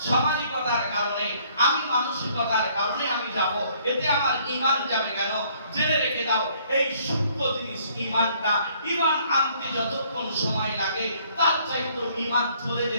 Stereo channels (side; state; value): both; inverted; correlation -0.63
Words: সামাজিকতার কারণে, আমি মানসিকতার কারণে আমি যাব, এতে আমার ঈমান যাবে কেন? জেনে রেখে দাও, এই সূক্ষ্ম জিনিস ঈমানটা, ঈমান আনতে যতক্ষণ সময় লাগে তার চাইতে ঈমান চলে